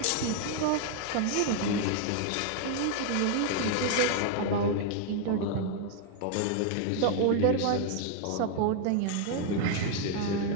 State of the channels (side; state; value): both; different; correlation 0.00